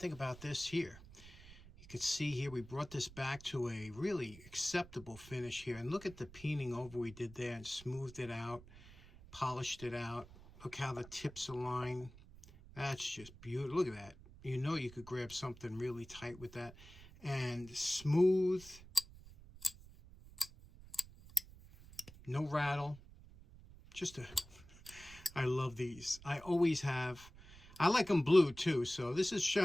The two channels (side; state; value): right; noise; rumble, 19 dB below the sound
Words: about this here? You can see here we brought this back to a really acceptable finish here. And look at the peening over we did there, and smoothed it out, polished it out. Look how the tips align. That's just beautiful. Look at that. You know you could grab something really tight with that. And smooth. No rattle. I love these. I always have. I like them blue too, so this is